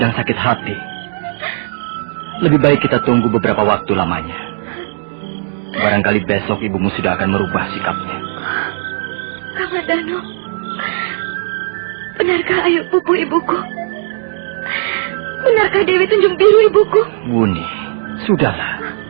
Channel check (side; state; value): left; silent; 61 dB below the other